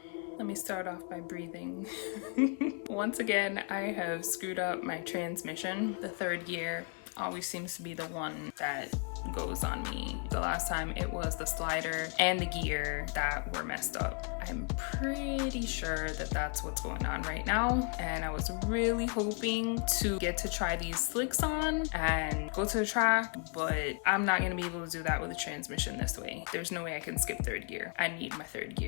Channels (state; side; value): quieter; right; 37.7 dB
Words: Let me start off by breathing. Once again, I have screwed up my transmission. The third gear always seems to be the one that goes on me. The last time it was the slider and the gear that were messed up. I'm pretty sure that that's what's going on right now, and I was really hoping to get to try these slicks on and go to the track, but I'm not going to be able to do that with the transmission this way. There's no way I can skip third gear. I need my third